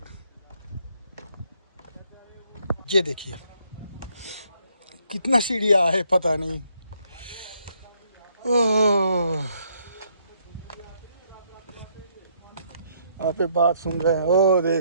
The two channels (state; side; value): inverted; both; correlation -0.70